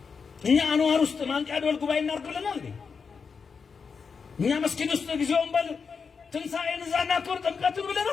እኛ አንዋር ውስጥ ማንቂያ ደወል ጉባኤ እናድርግ ብለናል እንዴ? እኛ መስጊድ ውስጥ ጊዜውን በል ትንሣኤን እዛ እናክብር ጥምቀትን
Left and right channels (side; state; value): right; quieter; 5.6 dB